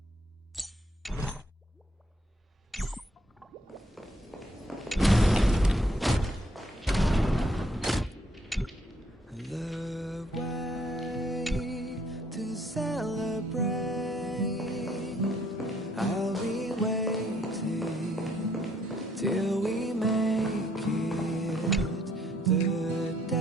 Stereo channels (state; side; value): normal; both; correlation 0.67